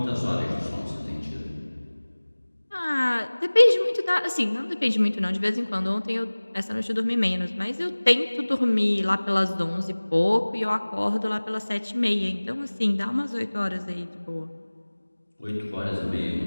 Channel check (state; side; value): inverted; both; correlation -1.00